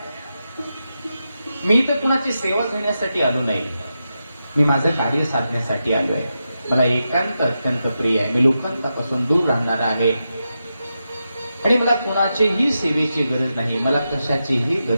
मी तर कुणाची सेवा घेण्यासाठी आलो नाही, मी माझं कार्य साधण्यासाठी आलो आहे. मला एकांत अत्यंत प्रिय आहे. मी लोकांपासून दूर राहणार आहे आणि मला कोणाचीही सेवेची गरज नाही, मला कशाचीही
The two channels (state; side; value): inverted; both; correlation -0.89